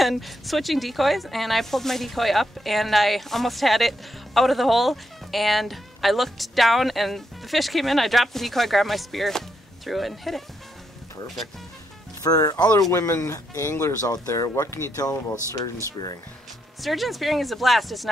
switching decoys, and I pulled my decoy up and I almost had it out of the hole, and I looked down and the fish came in. I dropped the decoy, grabbed my spear, threw it, and hit it. Perfect. For other women anglers out there, what can you tell them about sturgeon spearing? Sturgeon spearing is a blast. It's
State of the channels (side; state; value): both; normal; correlation 0.79